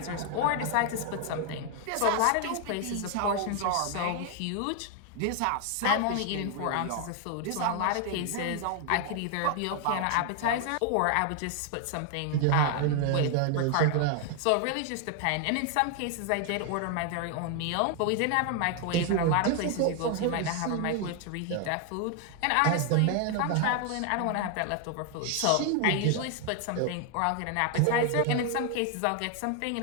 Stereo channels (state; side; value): different; both; correlation 0.00